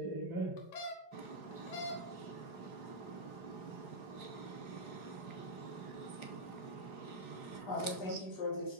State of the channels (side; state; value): right; late; 4.9 ms